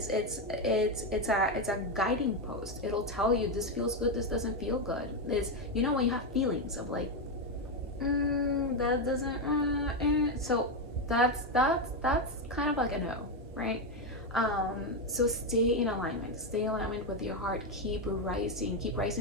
a guiding post. It'll tell you this feels good, this doesn't feel good. It's, you know, when you have feelings of like, that doesn't so that's kind of like a no, right? So stay in alignment with your heart. Keep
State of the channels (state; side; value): normal; both; correlation 0.07